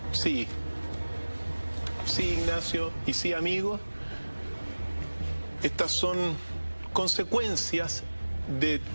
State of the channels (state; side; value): inverted; both; correlation -1.00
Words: Sí, Ignacio, y sí, amigos. Estas son consecuencias de